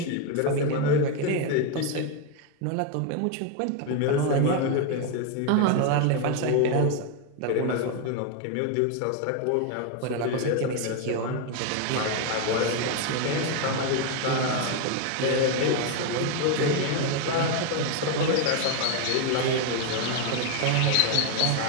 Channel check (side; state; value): both; different; correlation 0.01